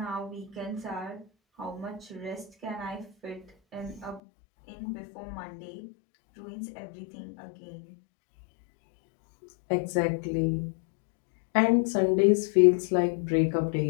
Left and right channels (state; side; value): drops out; right; at 4.2 s